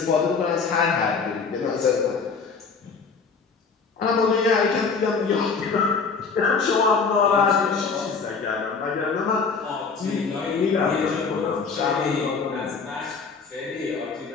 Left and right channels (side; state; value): right; quieter; 5.1 dB